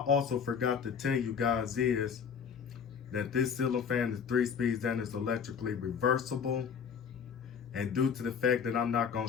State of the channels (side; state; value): right; quieter; 6.8 dB